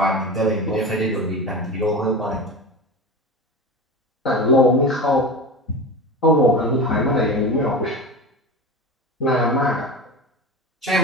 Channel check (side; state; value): both; normal; correlation 0.28